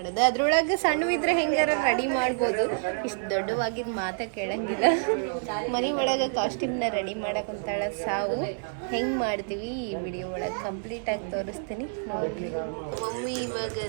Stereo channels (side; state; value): left; silent; digital silence